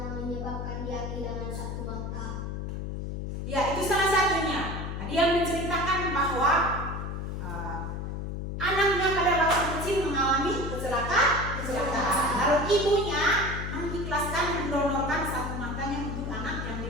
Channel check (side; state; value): left; noise; hum, 5 dB below the sound